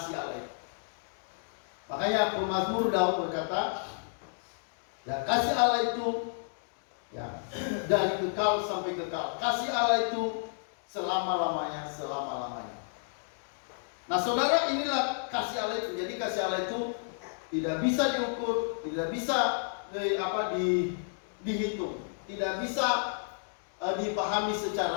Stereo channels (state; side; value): silent; right; digital silence